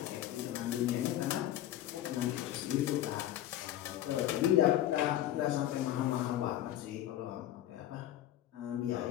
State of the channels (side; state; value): right; quieter; 12.9 dB